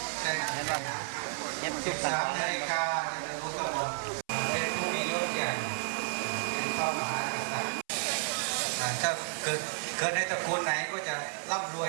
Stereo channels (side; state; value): left; silent; 56 dB below the other